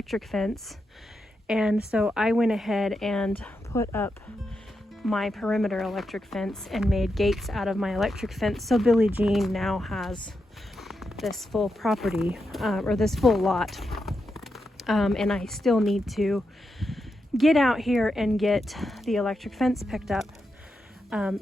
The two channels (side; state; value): both; normal; correlation 0.86